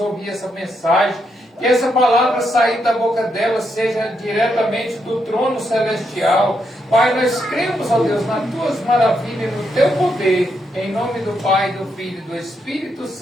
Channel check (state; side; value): normal; both; correlation 0.80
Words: essa mensagem, que essa palavra sair da boca dela seja diretamente do trono celestial. Pai, nós cremos, ó Deus, nas tuas maravilhas, no teu poder, em nome do Pai, do Filho e do Espírito